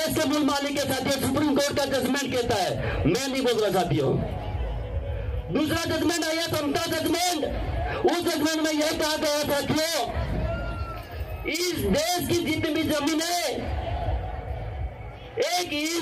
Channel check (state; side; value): identical; both; correlation 1.00